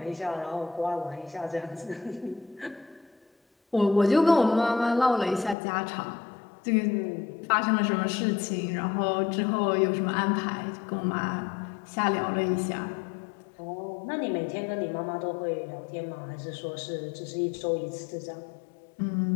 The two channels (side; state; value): right; drops out; at 5.6 s